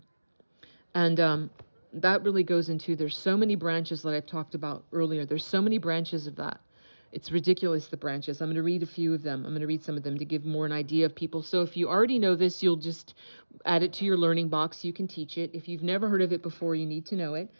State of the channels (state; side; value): inverted; both; correlation -1.00